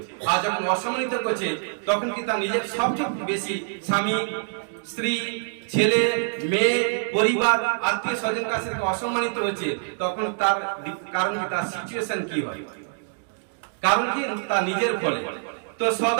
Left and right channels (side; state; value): left; silent; digital silence